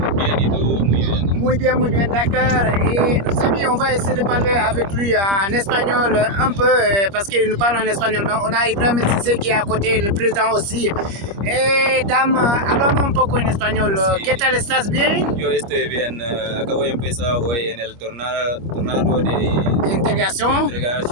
Bien, ¿y tú? Muy bien. Muy bien, d'accord. Et nos amis, on va essayer de parler avec lui en espagnol un peu, parce qu'il nous parle en espagnol. Mais on a Ibrahim Cissé qui est à côté, le président aussi. Dame, hablamos un poco en español. Sí. ¿Qué tal? ¿Estás bien? Yo estoy bien. Acabo de empezar hoy en el tornado de Integración.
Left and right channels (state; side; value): late; left; 25 ms